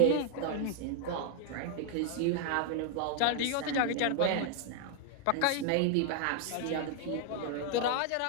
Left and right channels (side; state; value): both; different; correlation 0.00